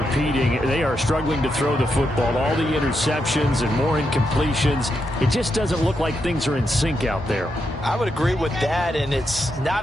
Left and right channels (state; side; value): normal; both; correlation 0.83